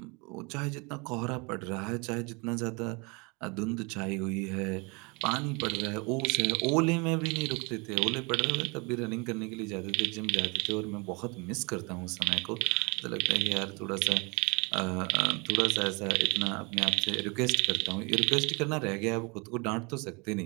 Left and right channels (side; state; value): left; quieter; 29.7 dB